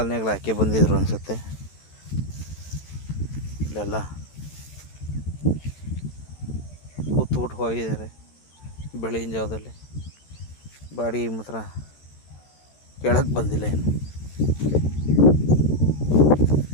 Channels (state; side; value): late; right; 14 ms